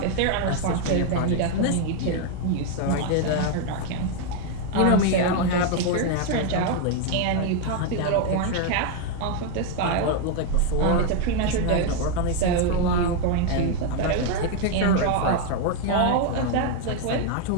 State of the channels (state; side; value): different; both; correlation 0.00